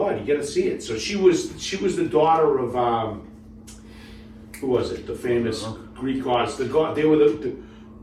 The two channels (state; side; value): identical; both; correlation 1.00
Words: you got to see it. So she was the daughter of who was it? The famous Greek gods. The god. They were